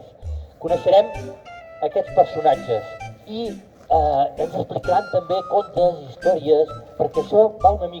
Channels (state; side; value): identical; both; correlation 1.00